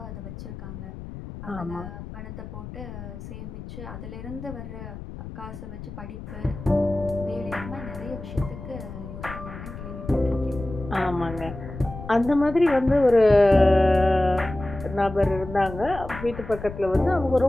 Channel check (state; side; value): noise; left; rumble, 11 dB below the sound